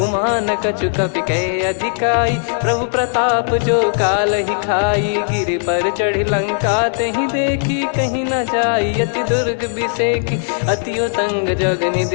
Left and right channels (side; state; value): right; silent; 68 dB below the other